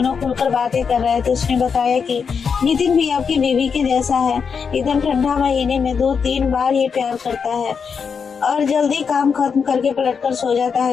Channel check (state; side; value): quieter; right; 6.1 dB